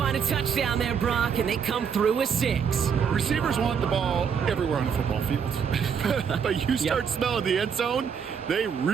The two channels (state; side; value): quieter; left; 7.0 dB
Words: a touchdown there, Brock, and they come through with 6. Receivers want the ball everywhere on the football field. But you start smelling the end zone, they